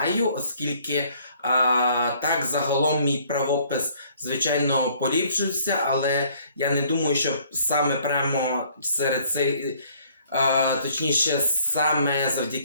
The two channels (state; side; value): inverted; both; correlation -0.60